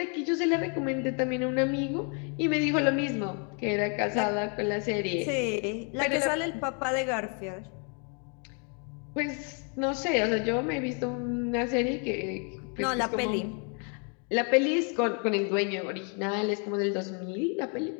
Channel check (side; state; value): right; quieter; 38.5 dB